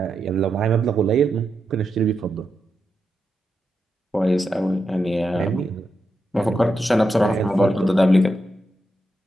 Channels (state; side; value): normal; both; correlation 0.86